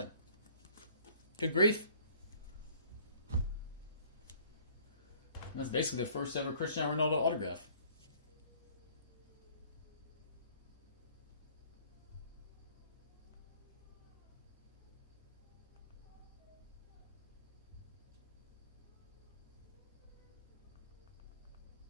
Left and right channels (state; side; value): inverted; both; correlation -0.55